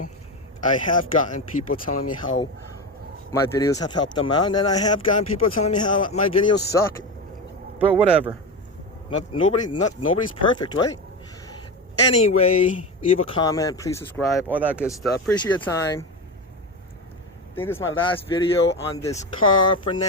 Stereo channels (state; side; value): normal; both; correlation 0.20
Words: I have gotten people telling me how my videos have helped them out, and then I have gotten people telling me how my videos suck. But whatever. Nobody's perfect, right? Anyway, leave a comment, please subscribe, all that good stuff. Appreciate your time. I think this is my last video on this car for